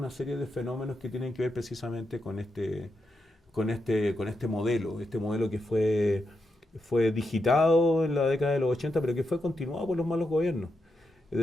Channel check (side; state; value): both; normal; correlation 0.85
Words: serie de fenómenos que tienen que ver precisamente con este modelo que fue digitado en la década de los 80, pero que fue continuado por los malos gobiernos. Es